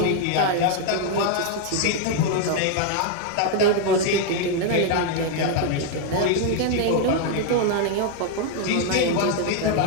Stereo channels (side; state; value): both; different; correlation 0.00